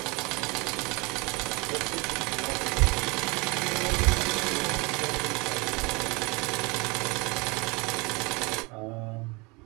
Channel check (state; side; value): quieter; left; 26.8 dB